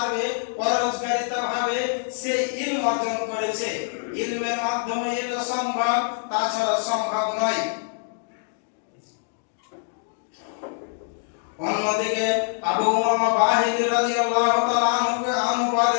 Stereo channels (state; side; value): silent; right; digital silence